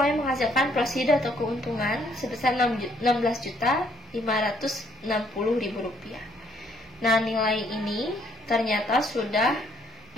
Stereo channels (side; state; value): both; normal; correlation 0.67